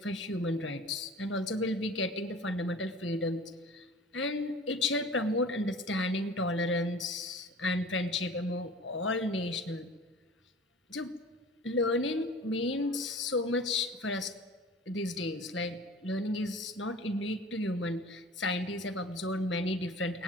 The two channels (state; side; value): normal; both; correlation 0.42